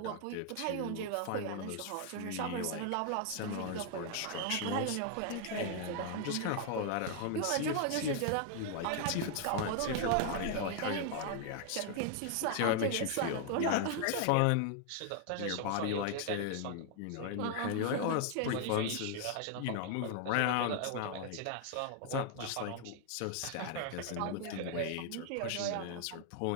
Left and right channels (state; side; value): different; both; correlation 0.00